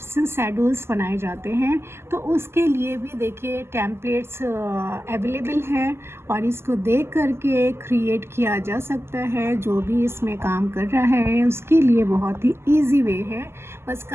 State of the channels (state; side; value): late; left; 0.12 ms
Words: शेड्यूल्स बनाए जाते हैं। तो उसके लिए भी देखिए टेम्पलेट्स अवेलेबल हैं और इसको देख करके क्रिएट किया जा सकता है। जो भी इसमें काम कर रहा है उसके लिए बहुत ही इजी वे है। बस